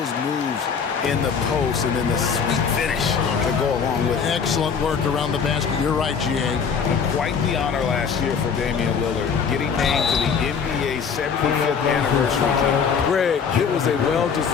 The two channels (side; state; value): right; quieter; 6.3 dB